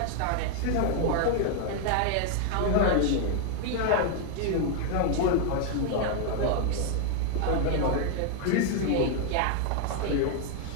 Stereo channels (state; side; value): different; both; correlation 0.00